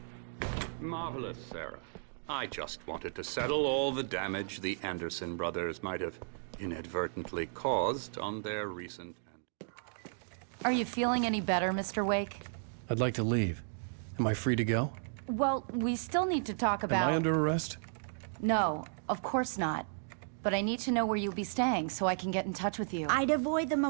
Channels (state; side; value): silent; left; digital silence